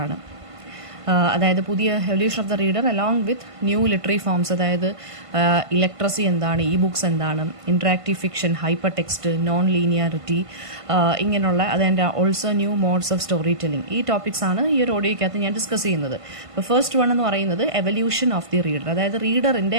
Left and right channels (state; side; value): late; left; 1.5 ms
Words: ആണ്. അതായത് പുതിയ evolution of the reader along with new literary forms. അതായത് ഇലക്ട്രസി എന്താണ്, ഇ ബുക്സ് എന്താണ്, interactive fiction, hyper text, non linearity, ഇങ്ങനെയുള്ള അതിൻ്റെ also new modes of story telling. ഈ ടോപ്പിക്സ് ആണ് ഈ ഒരു ഓഡിയോയ്ക്കകത്ത് ഞാൻ ഡിസ്കസ് ചെയ്യുന്നത്. ഇപ്പോൾ ഫസ്റ്റ് വൺ എന്ന് പറയുന്നത് എവല്യൂഷൻ ഓഫ് ദി റീഡർ. അതായത്